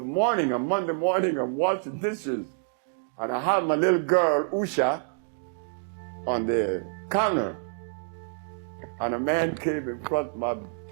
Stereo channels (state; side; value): silent; left; digital silence